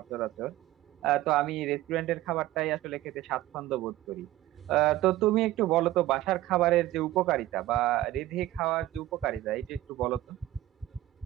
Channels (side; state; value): left; quieter; 15.5 dB